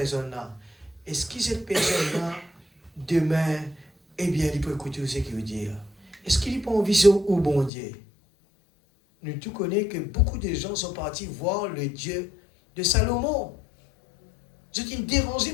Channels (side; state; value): right; drops out; at 7.7 s